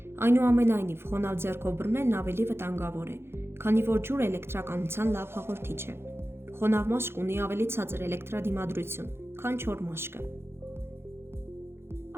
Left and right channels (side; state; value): left; late; 0.12 ms